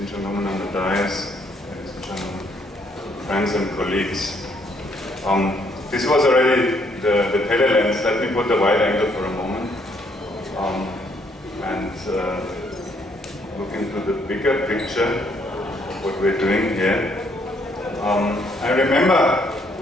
gentlemen on the dais, ladies and gentlemen, friends and colleagues. This was already the telelens. Let me put the wide angle for a moment and look into the bigger picture of what we're doing here. I remember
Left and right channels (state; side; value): normal; both; correlation 0.69